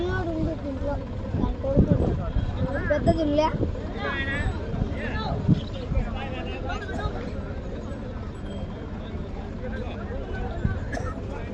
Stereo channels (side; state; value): both; identical; correlation 1.00